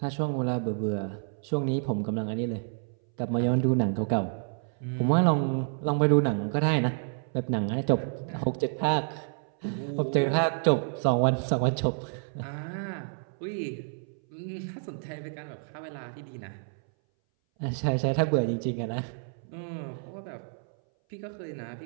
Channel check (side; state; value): left; silent; 58 dB below the other